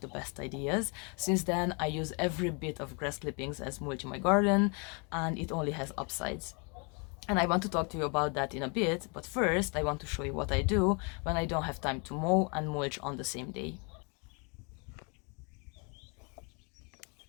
the best ideas. Since then, I use every bit of grass clippings as mulch in my garden, and it only has upsides. And I want to talk to you about that in a bit, but first I want to show you what I do when I don't have time to mow and mulch on the same day.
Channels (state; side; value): quieter; right; 33.8 dB